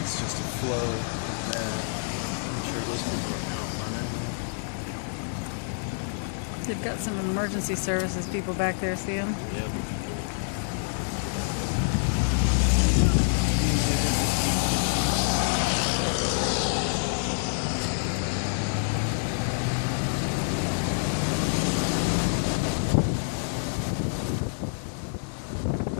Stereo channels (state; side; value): silent; right; digital silence